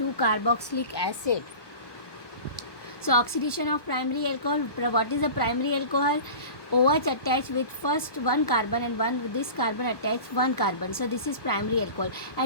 carboxylic acid. So oxidation of primary alcohol, what is the primary alcohol? OH attached with first one carbon and this carbon attached one carbon. So this is primary alcohol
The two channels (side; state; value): right; late; 1.2 ms